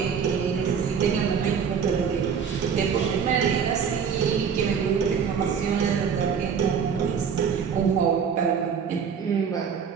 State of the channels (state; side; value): quieter; left; 6.9 dB